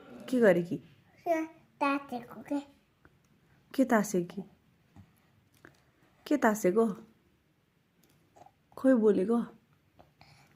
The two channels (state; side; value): identical; both; correlation 1.00